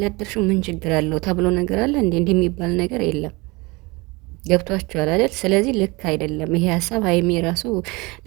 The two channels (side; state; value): left; quieter; 25.1 dB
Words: ምን ችግር አለው ተብሎ ነገር አለ እንዴ? እንደሚባል ነገር የለም። ገብቷችኋል አይደል? ስለዚህ ልክ አይደለም ይሄ ሀሳብ። ሀይሚ ራሱ